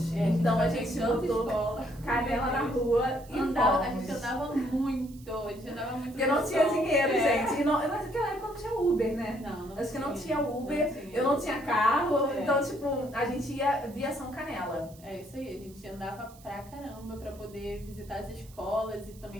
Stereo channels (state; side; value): noise; right; hiss, 24 dB below the sound